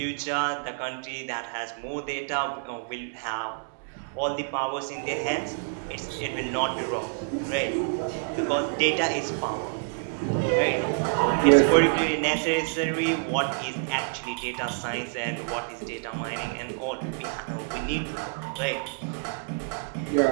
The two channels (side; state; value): left; silent; digital silence